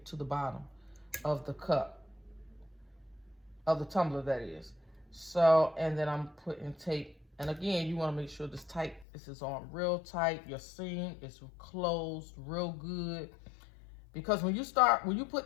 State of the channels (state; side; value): drops out; right; at 9.1 s